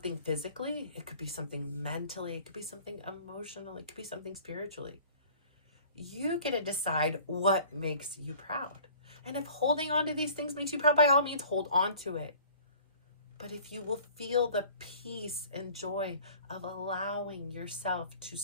physically. It could be something mentally. It could be something emotionally. It could be something spiritually. You get to decide what makes you proud. And if holding on to these things makes you proud, by all means, hold on to it. But if you will feel the peace and joy of allowing yourself to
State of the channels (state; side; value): inverted; both; correlation -0.48